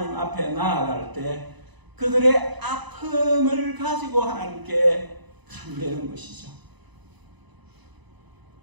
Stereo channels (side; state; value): left; late; 1.0 ms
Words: 앞에 나아갈 때 그들의 아픔을 가지고 하나님께 간대는 것이죠.